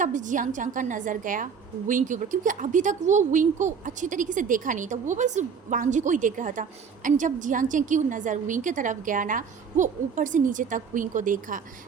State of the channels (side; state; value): left; quieter; 6.4 dB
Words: जियांग चैंग का नज़र गया विंग के ऊपर, क्योंकि अभी तक वो विंग को अच्छी तरीके से देखा नहीं था, वो बस वांग जी को ही देख रहा था। एंड जब जियांग चैंग की नज़र विंग की तरफ गया ना, वो ऊपर से नीचे तक विंग को देखा